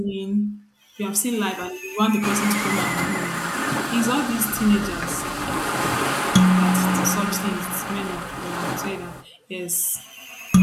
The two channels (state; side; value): identical; both; correlation 1.00